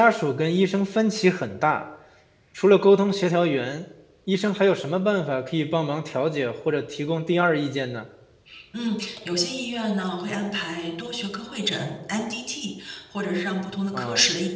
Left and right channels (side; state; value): both; identical; correlation 1.00